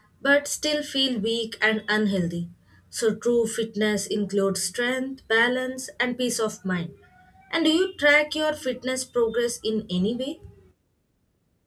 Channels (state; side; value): identical; both; correlation 1.00